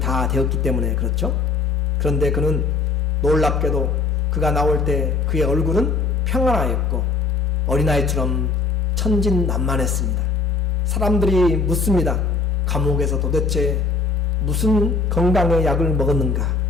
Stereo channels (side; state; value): right; quieter; 4.4 dB